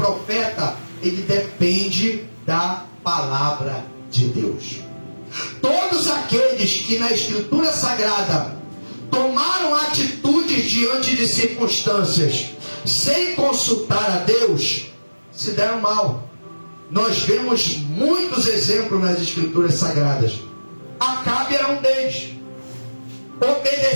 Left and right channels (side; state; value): both; inverted; correlation -1.00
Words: ele depende da palavra de Deus. Todos aqueles que na Escritura Sagrada tomaram atitudes diante de circunstâncias sem consultar a Deus, se deram mal. Nós vemos muitos exemplos nas Escrituras Sagradas. Acabe era um deles.